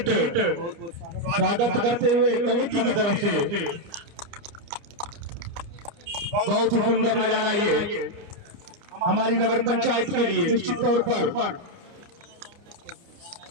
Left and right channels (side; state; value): left; late; 29 ms